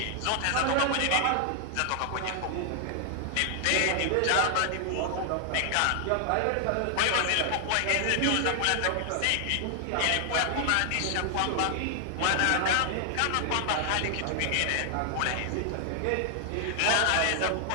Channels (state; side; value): different; both; correlation 0.00